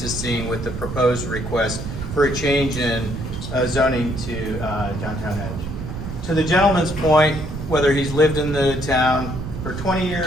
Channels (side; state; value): right; noise; rumble, 7 dB below the sound